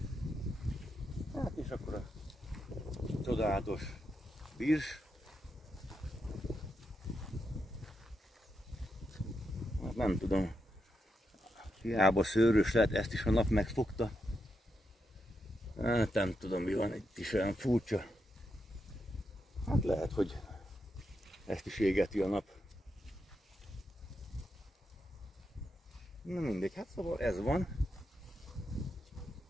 Hát és akkor a csodálatos virs. Hát nem tudom, hiába szőrös lehet, ezt is a nap megfogta. Hát nem tudom mi van, itt is olyan furcsa. Hát lehet, hogy ezt is égeti a nap. Na mindegy, hát szóval ez van.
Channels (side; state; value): both; normal; correlation 0.84